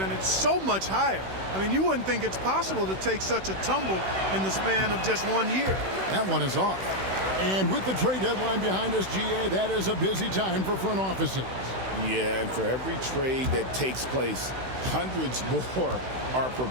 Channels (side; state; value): left; late; 16 ms